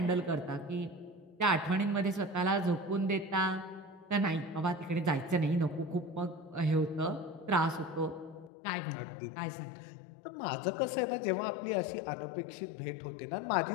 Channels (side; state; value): right; drops out; at 8.5 s